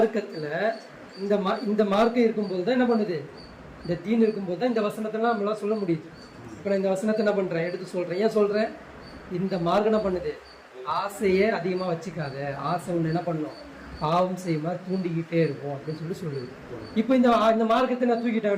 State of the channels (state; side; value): identical; both; correlation 1.00